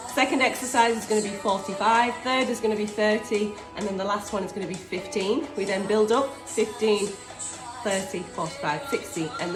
Second exercise is going to be 45, third is going to be 30, and then the last one is going to be 15. We then build up 15, 30, 45, 60, and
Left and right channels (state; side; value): identical; both; correlation 1.00